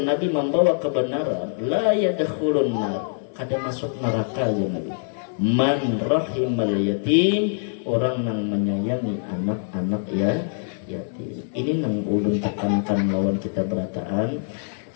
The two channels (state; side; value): silent; right; digital silence